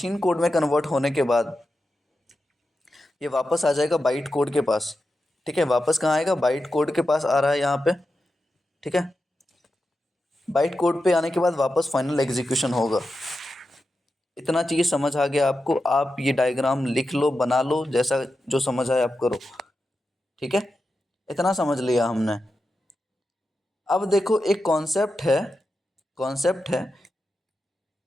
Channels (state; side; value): normal; both; correlation 0.90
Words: कोड में कन्वर्ट होने के बाद ये वापस आ जाएगा बाइट कोड के पास। ठीक है, वापस कहाँ आएगा? बाइट कोड के पास आ रहा है यहाँ पे। ठीक है, बाइट कोड पे आने के बाद वापस फाइनल एग्जीक्यूशन होगा। इतना चीज़ समझ आ गया आपको? आप ये डायग्राम लिख लो, बना लो, जैसा जो समझ आए आप करो। ठीक है, इतना समझ लिया हमने। अब देखो एक कॉन्सेप्ट है, कॉन्सेप्ट है,